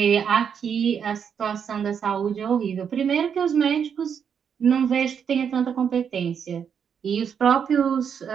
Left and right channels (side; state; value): left; quieter; 7.4 dB